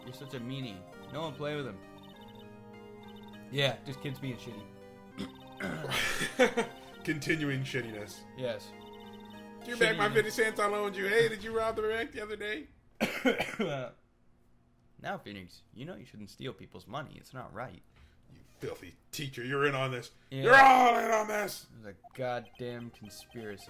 You're such a meanie. No one play with him. Yeah, just kids being shitty. Continuing shittiness. Yes. Give back my 50 cents I loaned you. Hey, did you rob the bank the other day? Now, Phoenix, you know you shouldn't steal people's money. It's not right. You filthy teacher, you're in on this. Yeah. You're all in on this. It was a goddamn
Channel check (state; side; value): identical; both; correlation 1.00